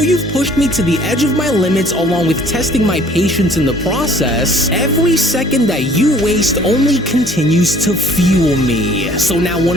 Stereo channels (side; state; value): both; normal; correlation 0.55